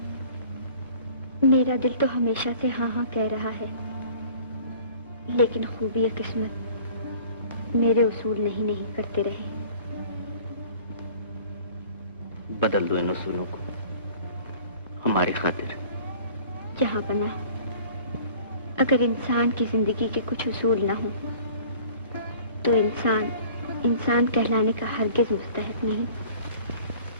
मेरा दिल तो हमेशा से हाँ हाँ कह रहा है, लेकिन खूबी किस्मत मेरे उसूल नहीं करते रहे। बदल दो इन उसूलों को हमारी खातिर। जहांपना, अगर इंसान की जिंदगी के कुछ उसूल ना हो तो इंसान कहलाने का हरगिज मुस्तहिक नहीं।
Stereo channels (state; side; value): inverted; both; correlation -0.48